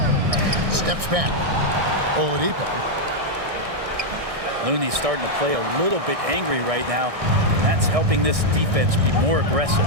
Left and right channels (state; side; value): late; left; 1.6 ms